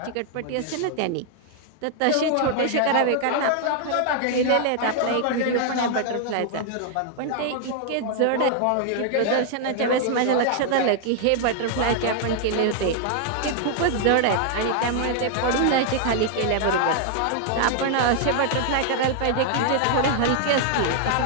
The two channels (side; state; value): both; different; correlation 0.00